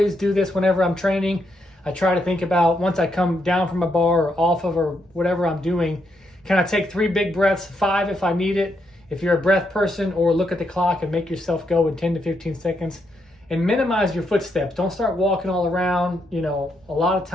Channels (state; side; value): normal; both; correlation 0.79